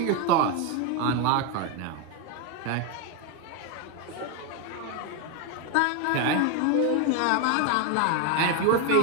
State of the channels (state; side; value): different; both; correlation 0.01